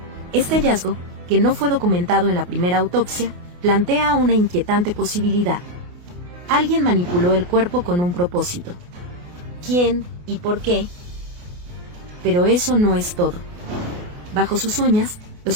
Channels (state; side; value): late; left; 28 ms